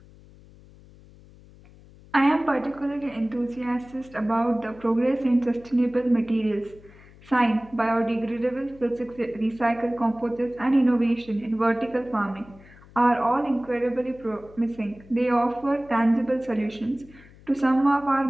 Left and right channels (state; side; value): noise; left; hum, 23 dB below the sound